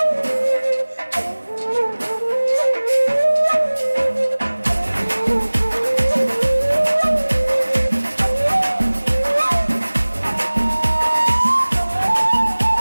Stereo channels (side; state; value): both; inverted; correlation -1.00